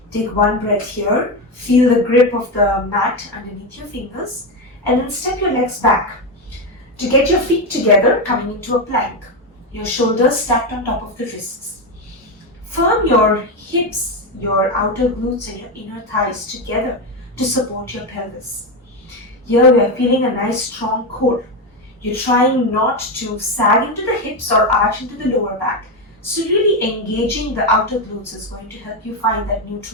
Take one breath here. Feel the grip of the mat underneath your fingers. And then step your legs back. To get your feet together, coming into a plank. Your shoulders stacked on top of the wrists. Firm your hips, your outer glutes and your inner thighs together to support your pelvis. Here we are feeling a nice strong core. You're trying not to sag into the hips or arch into the lower back. So really engaging the outer glutes is going to help you find that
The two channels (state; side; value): normal; both; correlation 0.11